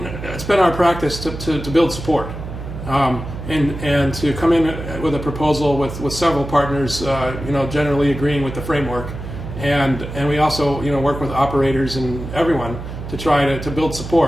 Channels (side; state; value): right; noise; hum, 9 dB below the sound